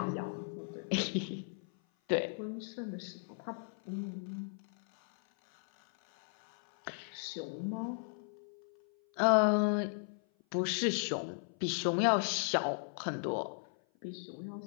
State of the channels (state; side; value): silent; right; 54 dB below the other